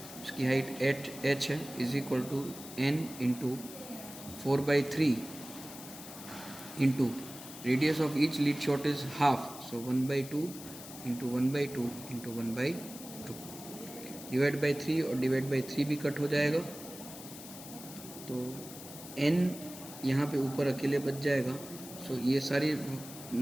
उसकी हाइट 8h है, is equal to n into 4/3 into radius of each lead shot is half, so 1/2 into 1/2 into 1/2 divide by 3 और डिवाइड बाई 3 भी कट हो जाएगा, तो n यहाँ पे ऊपर अकेले बच जाएगा. सो ये सारी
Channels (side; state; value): left; noise; hiss, 14 dB below the sound